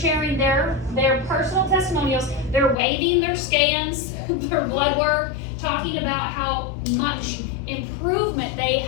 their personal testimonials, they're waving their scans, their blood work, talking about how much improvement they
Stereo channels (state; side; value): drops out; right; at 2.8 s